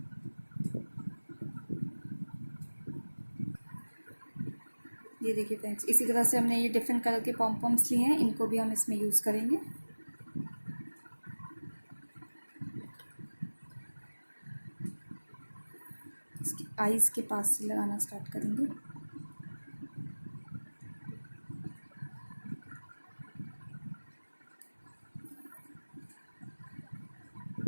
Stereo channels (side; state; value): both; inverted; correlation -1.00